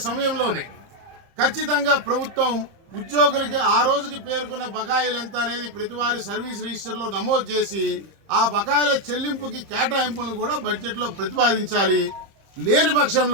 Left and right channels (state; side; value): late; left; 30 ms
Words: సమయంలోనే ఖచ్చితంగా ప్రభుత్వం ఉద్యోగులకి ఆ రోజుకి పేర్కొన్న బకాయిలు ఎంత అనేది ప్రతివారి సర్వీస్ రిజిస్టర్లో నమోదు చేసి ఆ బకాయిల చెల్లింపుకి కేటాయింపులను కూడా బడ్జెట్లో ప్రతిపాదించాలి. లేని